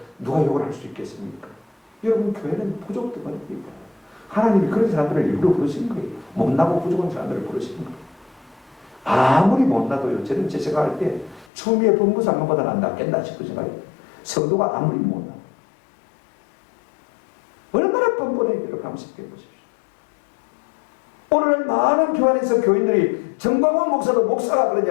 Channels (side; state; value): right; drops out; at 11.5 s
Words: 누가 욕을 할 수 있겠습니까? 여러분 교회는 부족들입니다. 하나님이 그런 사람들을 일부러 부르신 거예요. 못나고 부족한 사람들을 부르신 거예요. 아무리 못나도요. 저는 제 생각할 때 추미애 법무장관보다 낫겠나 싶은 생각이에요. 성도가 아무리 못나 얼마나 뻔뻔해 여러분 한번 생각해 보십시오. 오늘 많은 교회 안에서 교인들이 정광훈 목사도 목사가 그런